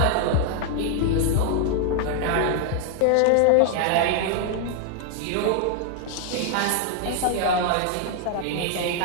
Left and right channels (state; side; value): different; both; correlation 0.00